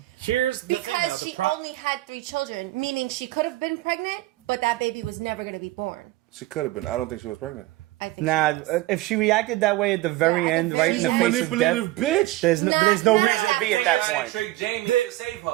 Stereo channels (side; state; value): left; quieter; 17.7 dB